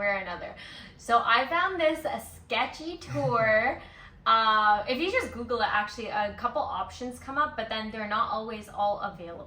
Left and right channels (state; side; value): identical; both; correlation 1.00